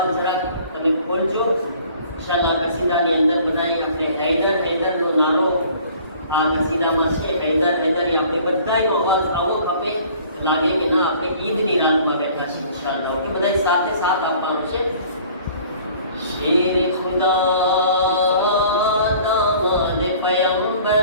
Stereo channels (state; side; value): inverted; both; correlation -0.52